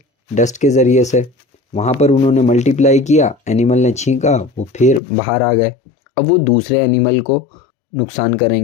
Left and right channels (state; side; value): drops out; right; at 5.0 s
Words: डस्ट के ज़रिए से, वहाँ पर उन्होंने मल्टीप्लाई किया, एनिमल ने छींका, वो फिर बाहर आ गए, अब वो दूसरे एनिमल को नुकसान